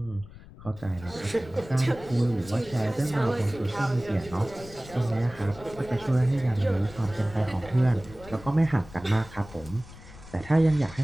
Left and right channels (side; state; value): left; noise; rumble, 18 dB below the sound